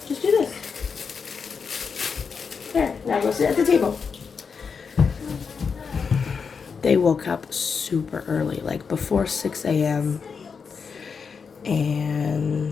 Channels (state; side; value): quieter; right; 5.7 dB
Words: Just do this. There, now go sit at the table. They woke up super early, like before 6 a.m.